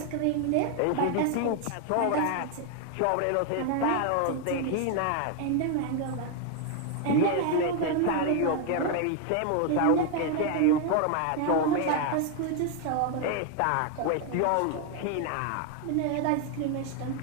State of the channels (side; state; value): both; different; correlation 0.01